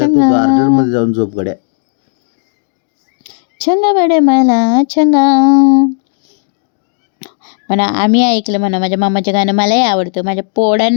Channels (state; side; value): silent; right; digital silence